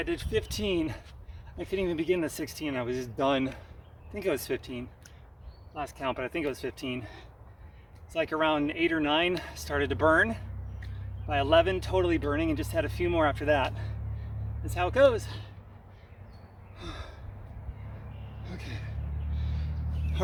did 15. I couldn't even begin the 16, I was just done. I think it was 15. Last count, but I think it was 15. It's like around 8 or 9, started to burn. By 11, totally burning, and just had a few more after that. That's how it goes. Okay.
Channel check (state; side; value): identical; both; correlation 1.00